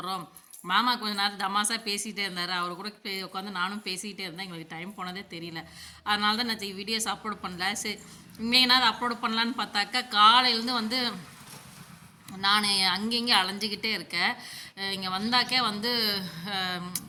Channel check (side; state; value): both; identical; correlation 1.00